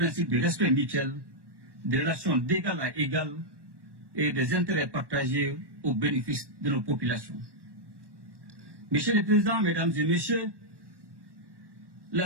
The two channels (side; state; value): left; late; 1.1 ms